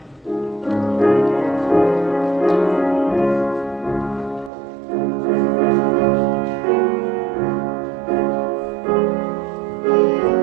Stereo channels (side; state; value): left; drops out; at 4.5 s